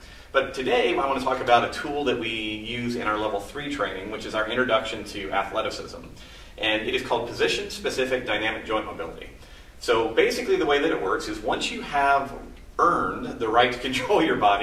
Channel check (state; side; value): identical; both; correlation 1.00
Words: But today I want to talk about a tool that we use in our Level 3 training, which is our introduction to athleticism. And it is called Position-Specific Dynamic Joint Mobility. So basically the way that it works is once you have earned the right to control your